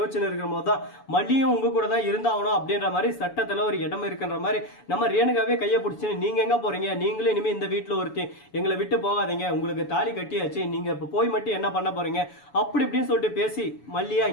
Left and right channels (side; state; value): right; late; 7.0 ms